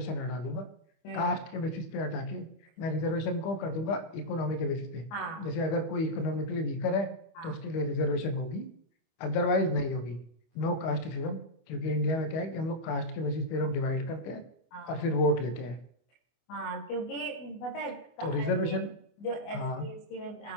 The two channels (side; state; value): right; late; 24 ms